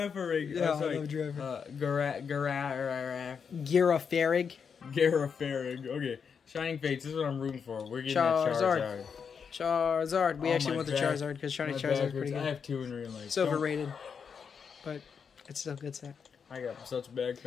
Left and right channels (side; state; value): right; quieter; 6.4 dB